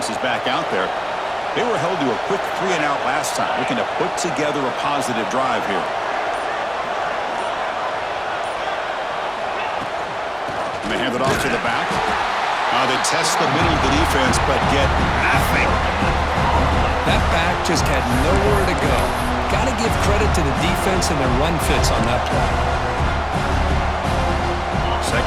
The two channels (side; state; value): both; identical; correlation 1.00